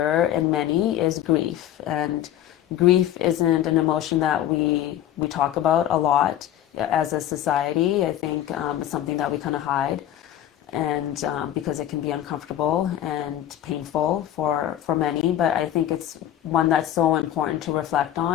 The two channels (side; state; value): right; quieter; 11.8 dB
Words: in many is grief. And grief isn't an emotion that we talk about a lot as a society. I think it's something that we kind of hide. And because it can be uncomfortable and painful for many, but I think it's one that's so important to reflect